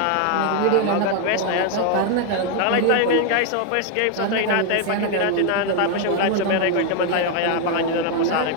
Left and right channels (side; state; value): both; different; correlation 0.01